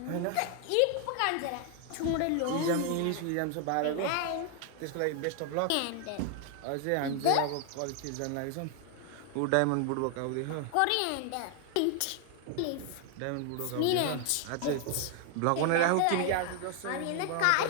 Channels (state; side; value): different; both; correlation 0.00